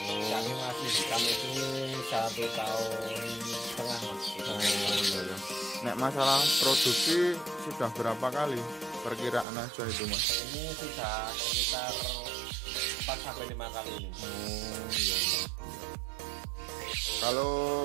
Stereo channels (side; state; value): left; drops out; at 9.5 s